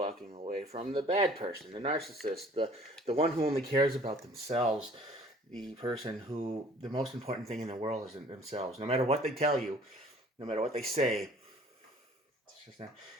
away from the bad person, the narcissist, the one who only cares about themselves, the person who the most important thing in the world is themselves. No matter what they tell you, no matter what they say, it's just not.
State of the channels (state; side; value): normal; both; correlation 0.53